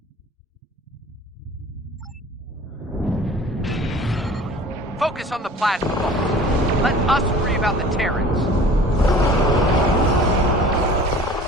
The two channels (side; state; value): both; normal; correlation 0.45